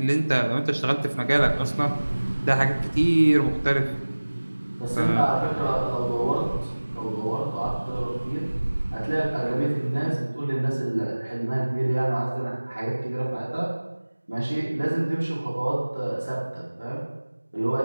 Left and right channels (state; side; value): inverted; both; correlation -1.00